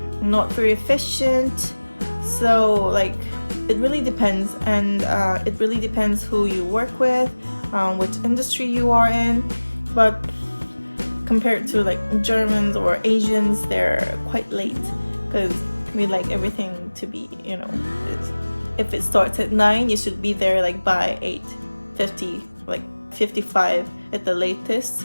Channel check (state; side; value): inverted; both; correlation -1.00